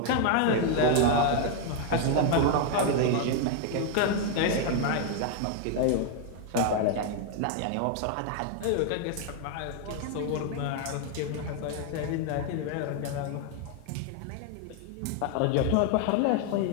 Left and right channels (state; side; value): different; both; correlation 0.01